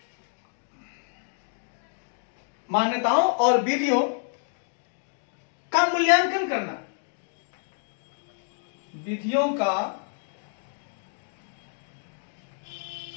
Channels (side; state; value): right; silent; digital silence